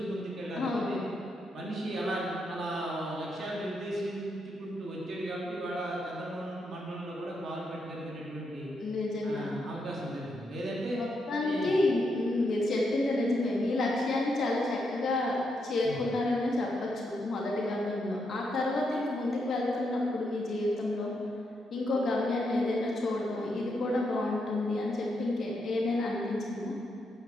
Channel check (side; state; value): both; normal; correlation 0.81